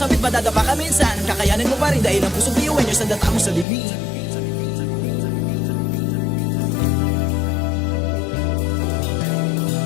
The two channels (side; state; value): right; drops out; at 3.7 s